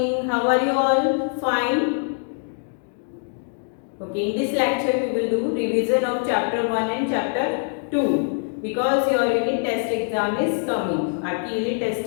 How are you all? Fine. Okay, in this lecture we will do revision of chapter 1 and chapter 2 because your unit test exam is coming. आपकी unit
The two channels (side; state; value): right; silent; 60 dB below the other